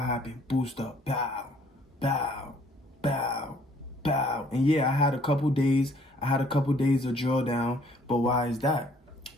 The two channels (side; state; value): both; normal; correlation 0.61